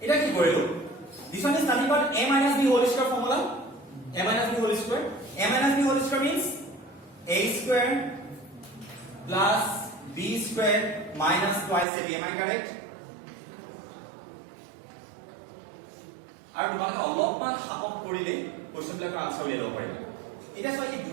এটা কি কৰিলো this one is nothing but a minus b whole square formula a minus b whole square means a square plus b square minus twice a b am I correct আৰু তোমালোকে অলপমান সাহস কৰিলে কোৱেশ্চন বিলাকৰ আনসাৰ উলিয়াই লব পাৰিবা এটা সৈ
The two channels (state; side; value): drops out; left; at 11.9 s